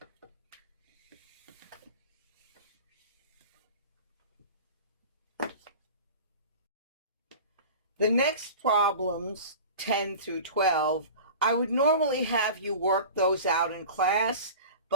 The next problems, 10 through 12, I would normally have you work those out in class,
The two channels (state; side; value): inverted; both; correlation -0.36